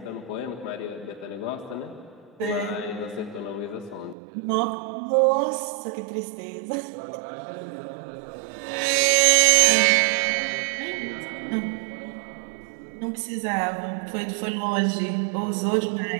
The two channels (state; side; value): drops out; left; at 4.2 s